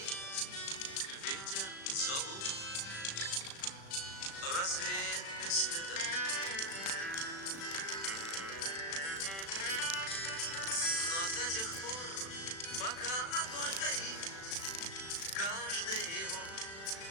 ветер зову развеет без следа. Но до тех пор, пока огонь горит, каждый его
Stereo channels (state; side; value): late; right; 36 ms